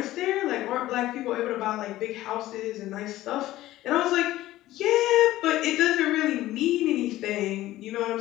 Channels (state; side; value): quieter; right; 15.6 dB